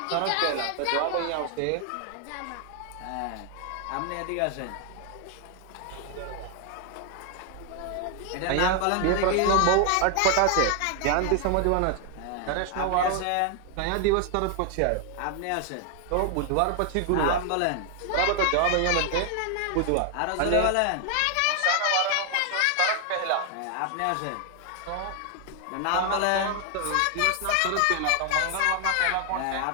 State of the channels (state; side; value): different; both; correlation 0.00